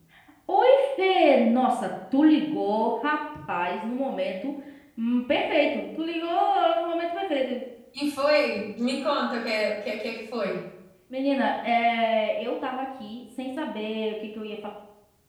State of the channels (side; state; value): both; identical; correlation 1.00